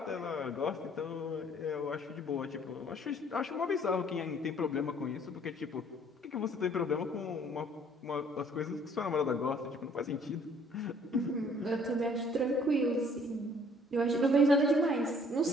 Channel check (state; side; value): normal; both; correlation 0.58